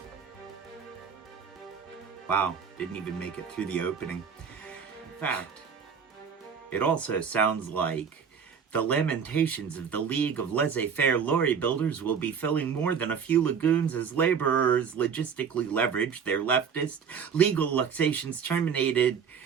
wow, didn't even make it through the opening. In fact, it also sounds like the lamentations of the League of Laissez-Faire Lorry Builders will be filling more than a few lagoons as laborers logistically leverage their leftist legal luxations terminated.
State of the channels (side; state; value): left; quieter; 6.8 dB